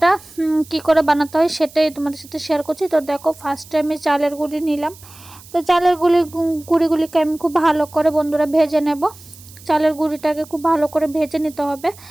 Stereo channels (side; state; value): right; noise; hiss, 21 dB below the sound